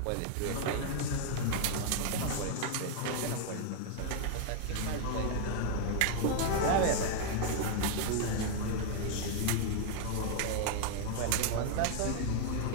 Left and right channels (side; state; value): both; different; correlation 0.00